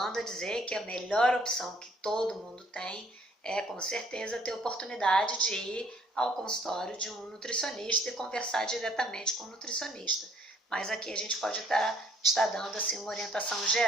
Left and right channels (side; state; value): both; normal; correlation 0.61